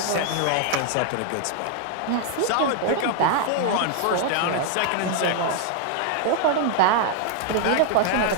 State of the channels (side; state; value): both; different; correlation 0.00